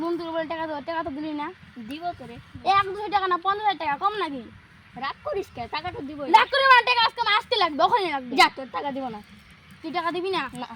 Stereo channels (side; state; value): both; identical; correlation 1.00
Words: তুলে বলে টাকা তো দিলি না দিব তো রে 1-2 টাকা না 50 টাকা কম নাকি রাগ করিস কে টাকাটা দিব রাগ করে না টাকা আজকে আসতে লাগবে ওখানে লাগবে যা তোর টাকা দিব না তুই টাকা দিবি না না